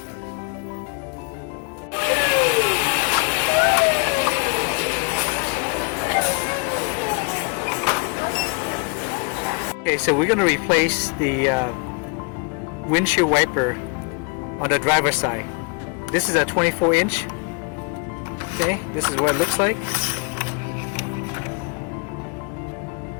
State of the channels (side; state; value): right; quieter; 32.9 dB